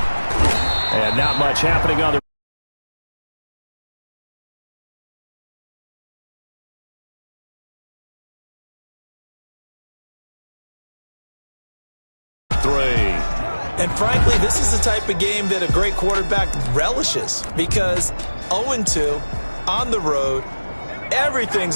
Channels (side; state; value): both; inverted; correlation -1.00